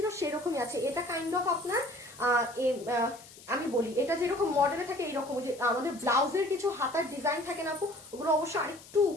সেরকমই আছে। এটা কাইন্ড অফ আপনার আমি বলি, এটা যেরকম মডেলে থাকে এইরকম, যে আমাদের ব্লাউজের কিছু হাতার ডিজাইন থাকে না আপু, ওগুলো অবশ্য আরেকটু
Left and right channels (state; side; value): noise; left; hiss, 20 dB below the sound